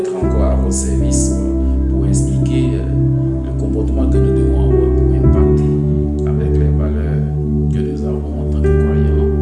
encore à votre service pour expliquer le comportement que nous devons avoir pour impacter avec les valeurs que nous avons en tant que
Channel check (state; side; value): identical; both; correlation 1.00